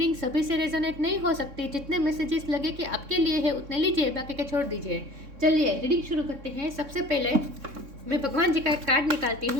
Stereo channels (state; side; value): late; left; 3.6 ms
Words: सभी से रेजोनेट नहीं हो सकती। जितने मैसेजेस लगे कि आपके लिए है उतने लीजिए, बाकी के छोड़ दीजिए। चलिए रीडिंग शुरू करते हैं। सबसे पहले मैं भगवान जी का एक कार्ड निकालती